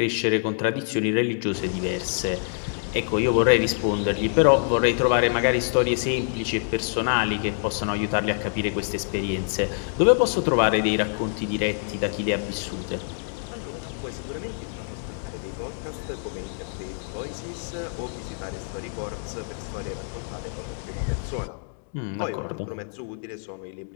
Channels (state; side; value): silent; right; digital silence